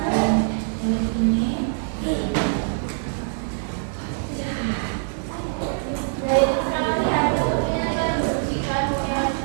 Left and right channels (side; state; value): left; silent; 63 dB below the other